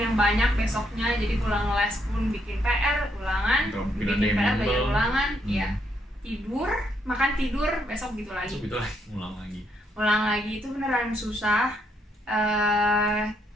banyak besoknya, jadi pulang les pun bikin PR, ulangan, bikin PR, belajar ulangan, ya tidur, makan tidur, besok gitu lagi. Ulang lagi itu beneran susah.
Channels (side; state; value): both; normal; correlation 0.75